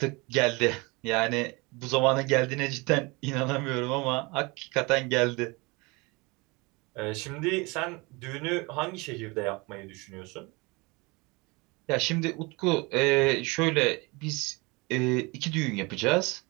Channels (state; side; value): quieter; left; 26.1 dB